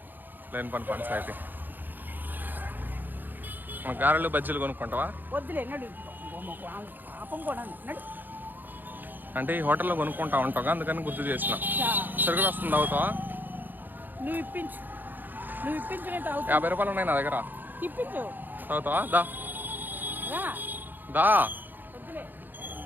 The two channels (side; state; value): left; late; 0.088 ms